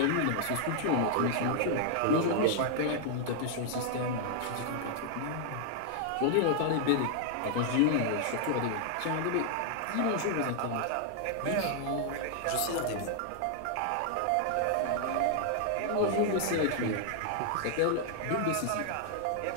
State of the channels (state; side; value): different; both; correlation 0.00